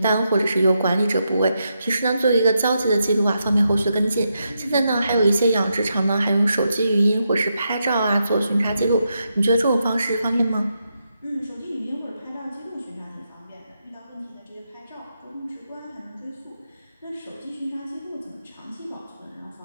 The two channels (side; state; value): both; inverted; correlation -0.84